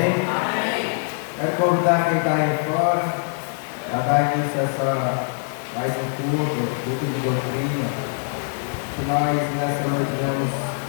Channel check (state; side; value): silent; right; digital silence